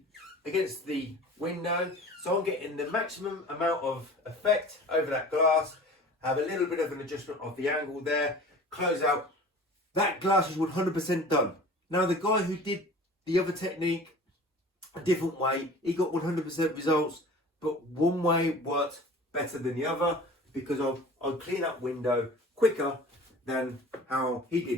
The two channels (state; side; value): normal; both; correlation 0.42